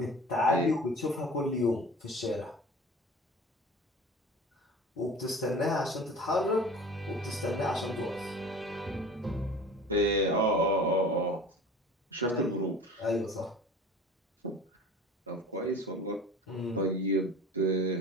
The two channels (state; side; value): normal; both; correlation 0.40